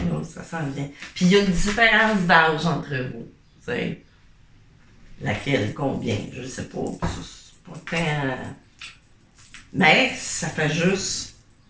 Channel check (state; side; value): identical; both; correlation 1.00